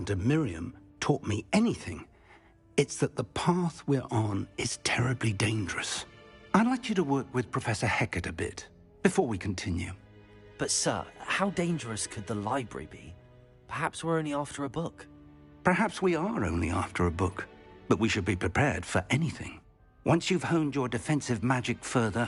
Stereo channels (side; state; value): both; identical; correlation 1.00